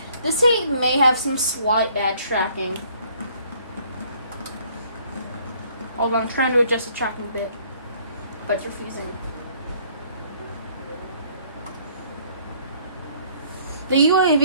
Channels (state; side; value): inverted; both; correlation -0.61